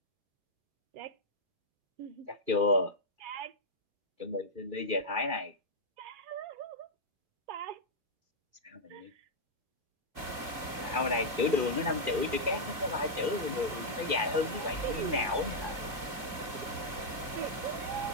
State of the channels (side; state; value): left; late; 2.3 ms